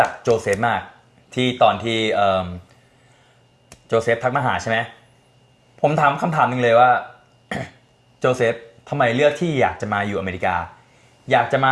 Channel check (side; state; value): both; identical; correlation 1.00